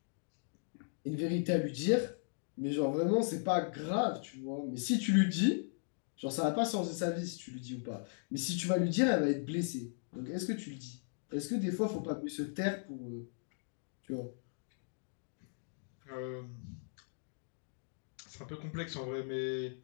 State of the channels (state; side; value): silent; right; digital silence